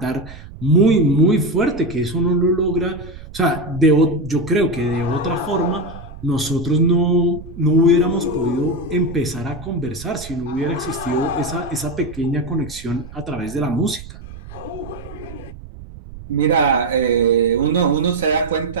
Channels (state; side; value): noise; right; rumble, 15 dB below the sound